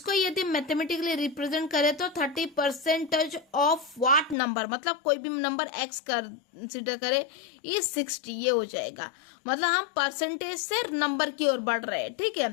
यदि मैथमेटिकली रिप्रेजेंट करें तो 30% ऑफ व्हाट नंबर, मतलब कोई भी नंबर x कंसिडर करे ये 60, ये हो जाएगा। मतलब हम परसेंटेज से नंबर की ओर बढ़ रहे हैं, ठीक है।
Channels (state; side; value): drops out; right; at 4.4 s